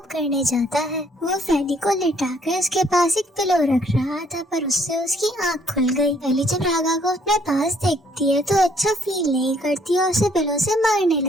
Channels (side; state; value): both; normal; correlation 0.64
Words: करने जाता है। वो फैली को लिटाकर उसके पास एक पिलो रख रहा था, पर उससे उसकी आंख खुल गई। फैली जब राघव को अपने पास देखती है तो अच्छा फील नहीं करती और उसे पिलो से मारने